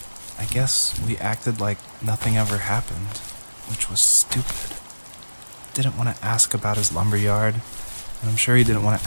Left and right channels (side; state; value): both; inverted; correlation -1.00